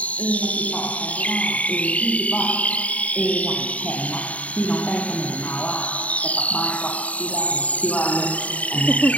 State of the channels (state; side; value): late; right; 0.068 ms